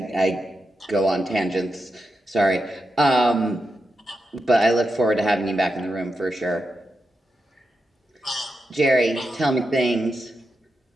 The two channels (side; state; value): both; normal; correlation 0.87